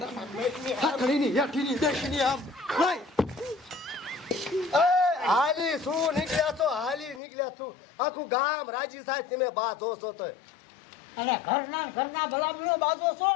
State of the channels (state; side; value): drops out; right; at 7.2 s